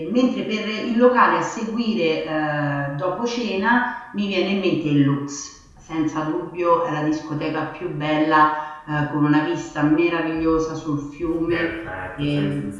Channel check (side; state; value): both; identical; correlation 1.00